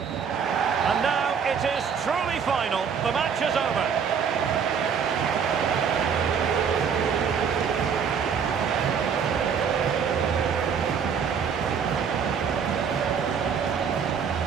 now it is truly final. The match is over.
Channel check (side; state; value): left; quieter; 6.8 dB